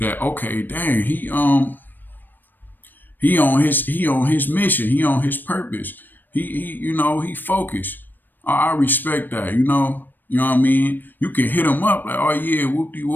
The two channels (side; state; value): right; late; 0.091 ms